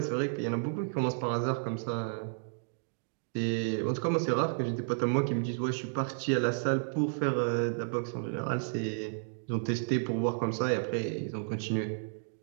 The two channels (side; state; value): left; silent; digital silence